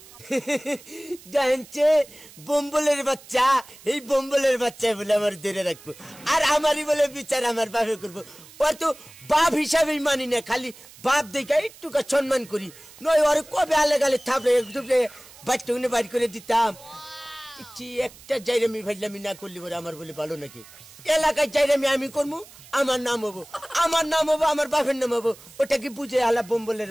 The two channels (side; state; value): right; noise; hiss, 21 dB below the sound